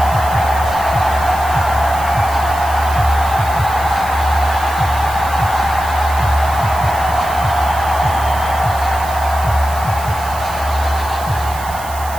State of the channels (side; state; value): right; noise; hiss, 15 dB below the sound